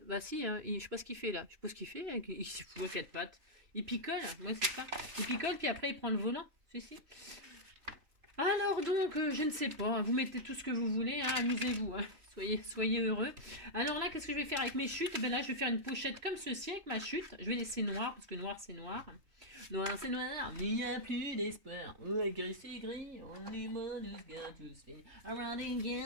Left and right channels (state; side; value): late; left; 3.0 ms